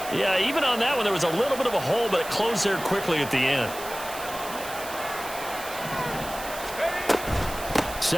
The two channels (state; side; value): noise; right; hiss, 12 dB below the sound